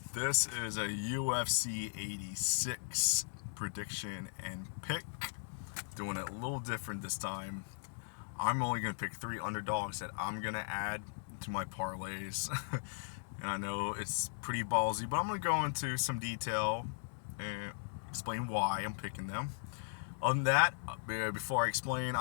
This is a UFC 86 prediction and pick. Doing it a little different this time. I'm only going to pick 3 underdogs that I'm going to add to my parlays. And I know it's pretty ballsy, but I'm going to go into some detail and explain why I'm picking them. Other than that, before I explain,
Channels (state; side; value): silent; right; digital silence